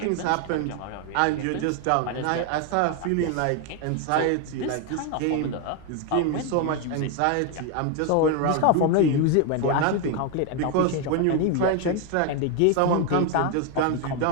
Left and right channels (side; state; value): both; different; correlation 0.01